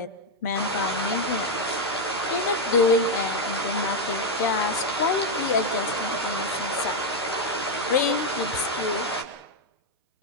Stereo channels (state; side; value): normal; both; correlation 0.03